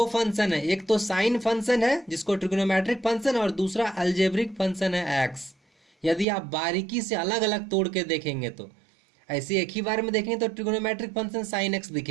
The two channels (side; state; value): left; drops out; at 6.2 s